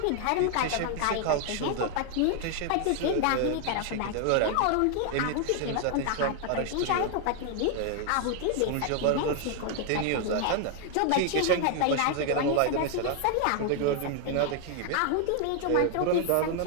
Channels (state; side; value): different; both; correlation 0.00